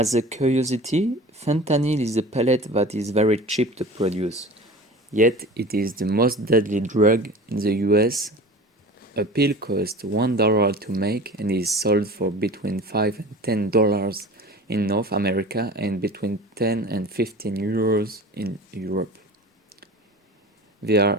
a curiosity, fentanyl is a pellet that is very cheap to produce, yet it is the most deadly drug in the US. A pill costs $1 to make and is sold for between $5 and $10 in North America and between 10 and 15 euros in Europe. They are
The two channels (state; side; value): normal; both; correlation 0.38